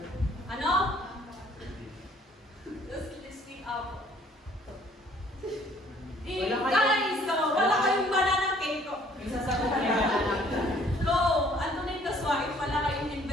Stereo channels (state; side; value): normal; both; correlation 0.59